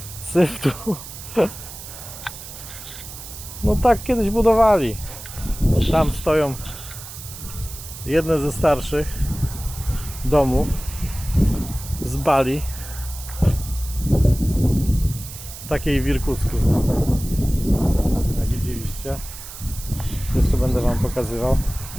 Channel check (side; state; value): right; noise; hiss, 13 dB below the sound